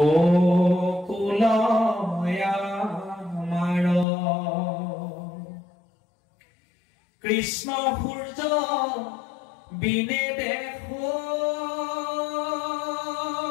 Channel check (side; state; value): right; drops out; at 4.0 s